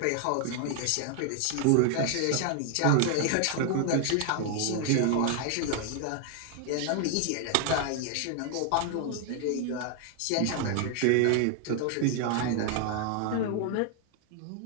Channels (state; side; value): different; both; correlation 0.00